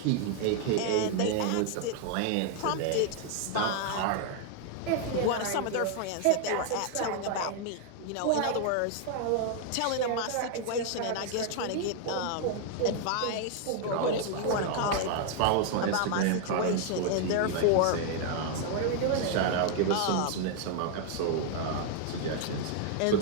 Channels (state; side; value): different; both; correlation 0.00